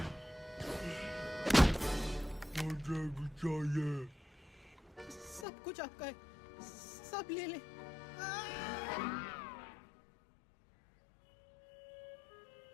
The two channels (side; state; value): right; drops out; at 5.5 s